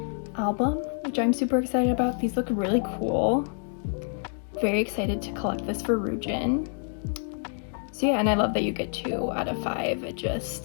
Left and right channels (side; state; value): right; silent; 57 dB below the other